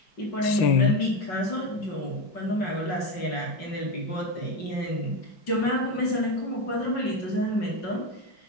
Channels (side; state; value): right; late; 5.4 ms